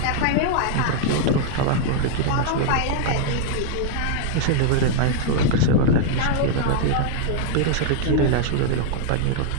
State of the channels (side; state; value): both; different; correlation 0.00